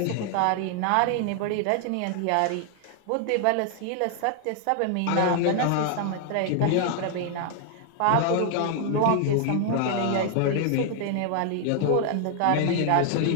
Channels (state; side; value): different; both; correlation 0.00